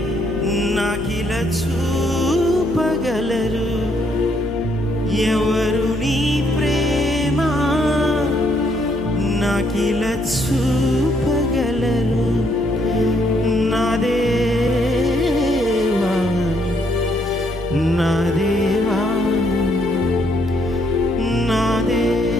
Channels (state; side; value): noise; right; hum, 13 dB below the sound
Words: నాకిలా చూపగలరు, ఎవరు నీ ప్రేమ నాకిలా చూపగలరు. నా దేవా నా దేవా నా